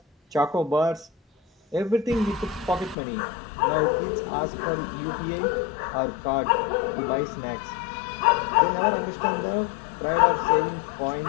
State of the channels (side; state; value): right; drops out; at 3.0 s